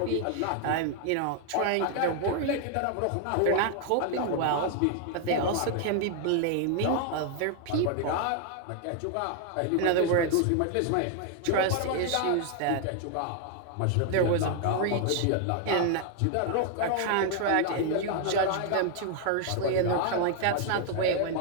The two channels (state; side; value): different; both; correlation 0.00